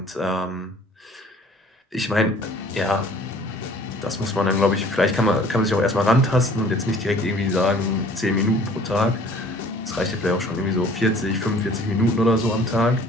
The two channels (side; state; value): both; normal; correlation 0.52